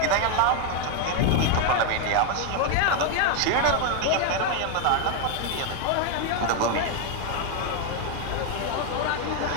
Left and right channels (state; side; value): different; both; correlation 0.01